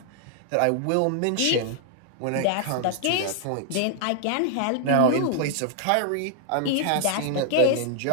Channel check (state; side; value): different; both; correlation 0.00